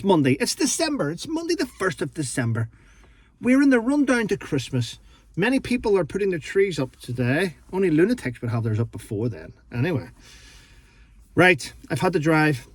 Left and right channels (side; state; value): both; identical; correlation 1.00